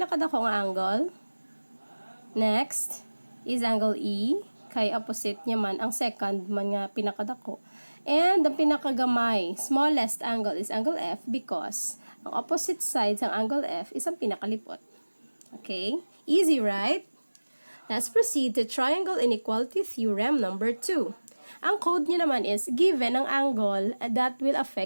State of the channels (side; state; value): both; inverted; correlation -1.00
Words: nga angle. Next is angle E, kay opposite niya man ang second man nga pinakadako. And the pinakagamay, smallest angle is angle F because ang opposite sides ng angle F is ang pinakalipot. Okay, easy, right? Let's proceed to triangle inequality theorem number 2. Ang code niya naman is given ang angle that will